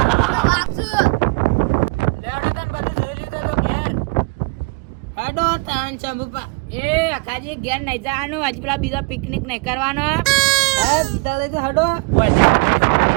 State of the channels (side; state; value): left; quieter; 29.0 dB